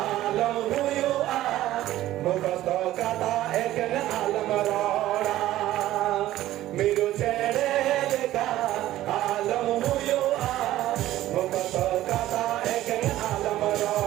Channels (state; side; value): quieter; left; 14.5 dB